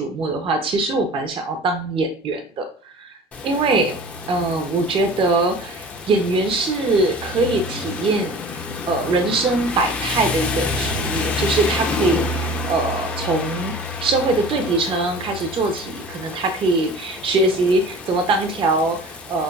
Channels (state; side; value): normal; both; correlation 0.42